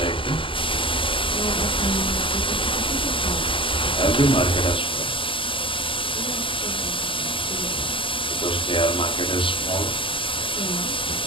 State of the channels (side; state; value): right; late; 0.25 ms